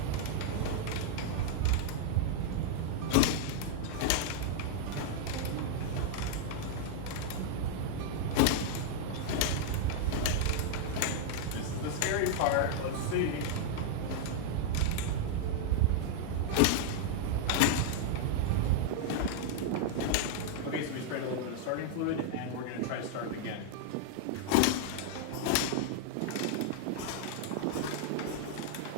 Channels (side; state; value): both; different; correlation -0.01